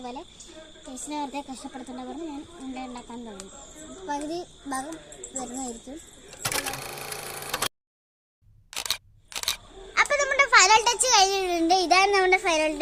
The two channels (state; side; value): identical; both; correlation 1.00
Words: ചേച്ചിനെ വെറുതെ കഷ്ടപ്പെടുത്തേണ്ട പറഞ്ഞ് ഞാൻ ഉണ്ടാക്കാൻ തുടങ്ങി. പകുതി ഭാഗം വരുന്നതായിരിക്കും. അപ്പോൾ നമ്മുടെ ഫൈനൽ ടച്ച് കഴിഞ്ഞിട്ടുണ്ട്. ഇതാണ് നമ്മുടെ ഫൈനൽ